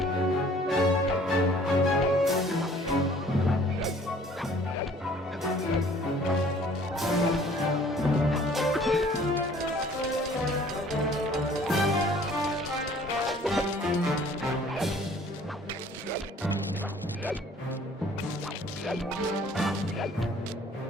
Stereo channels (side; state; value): both; normal; correlation 0.54